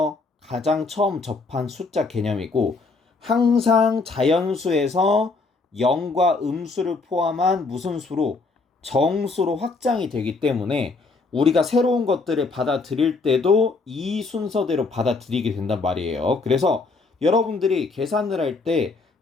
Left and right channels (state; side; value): quieter; right; 3.9 dB